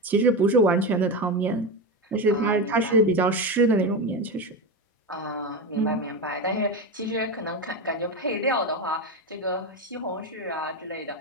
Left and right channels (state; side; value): normal; both; correlation 0.17